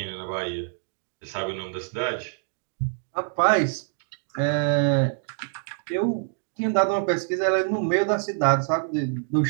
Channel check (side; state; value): left; silent; digital silence